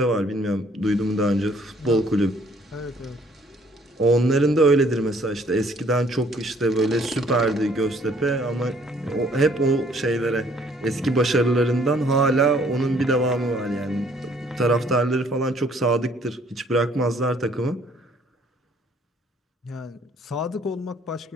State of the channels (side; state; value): both; normal; correlation 0.61